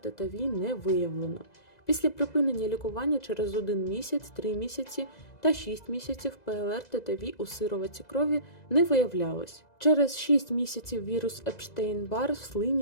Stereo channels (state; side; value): late; right; 2.0 ms